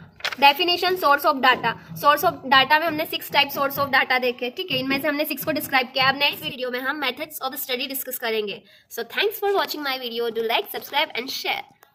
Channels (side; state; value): both; identical; correlation 1.00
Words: definition source of data. Source of data में हमने 6 टाइप सोर्स ऑफ डाटा देखे, ठीक है, इनमें से हमने 6 को डिस्क्राइब किया। अब नेक्स्ट वीडियो में हम मेथड्स ऑफ स्टडी डिस्कस करेंगे। So thanks for watching my video, do like, subscribe and share.